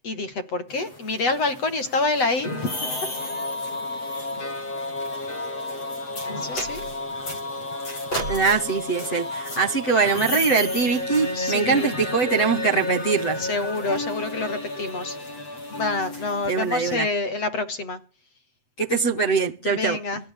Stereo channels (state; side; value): late; right; 7.9 ms